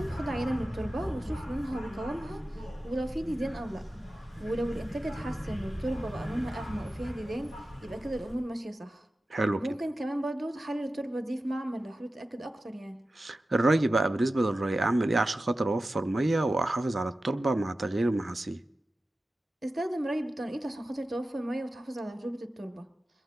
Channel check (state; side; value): normal; both; correlation 0.94